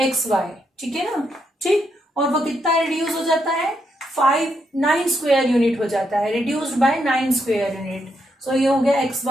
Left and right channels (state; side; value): normal; both; correlation 0.79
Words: XY। ठीक है ना। ठीक, और वो कितना रिड्यूस हो जाता है? 9 स्क्वायर यूनिट हो जाता है, रिड्यूस्ड बाय 9 स्क्वायर यूनिट। सो ये हो गया